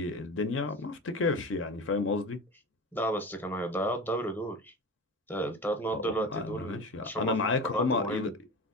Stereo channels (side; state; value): both; normal; correlation 0.29